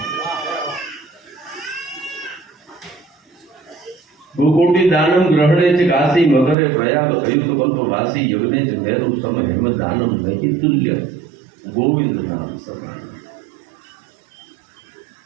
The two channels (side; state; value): left; drops out; at 6.6 s